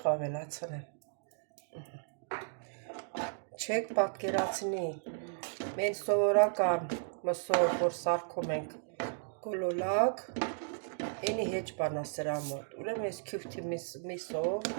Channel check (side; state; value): left; silent; digital silence